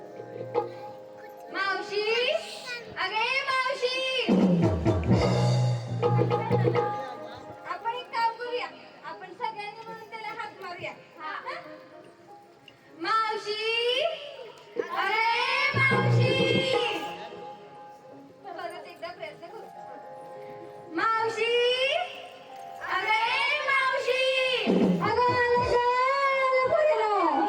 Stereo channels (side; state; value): both; identical; correlation 1.00